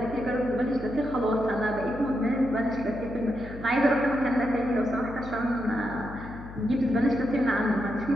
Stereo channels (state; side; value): noise; left; hum, 13 dB below the sound